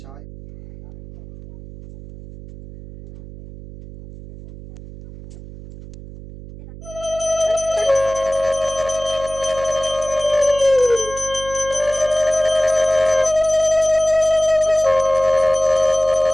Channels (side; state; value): right; noise; hum, 15 dB below the sound